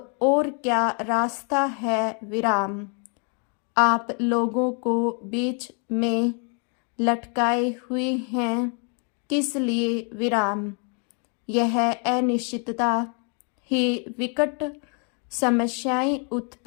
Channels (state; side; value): quieter; right; 38.6 dB